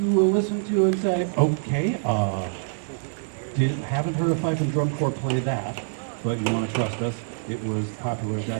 will listen to and say, okay, haven't heard a fife and drum corps play that, but you want to trust us, it was popular at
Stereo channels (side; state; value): left; silent; digital silence